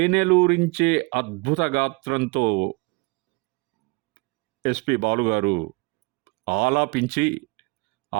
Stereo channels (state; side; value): quieter; left; 28.2 dB